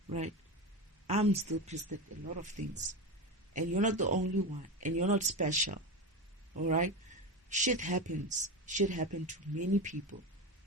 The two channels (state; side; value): normal; both; correlation 0.20